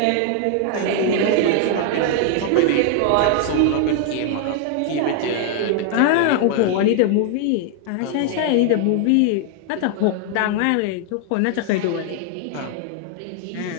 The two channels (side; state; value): both; different; correlation 0.00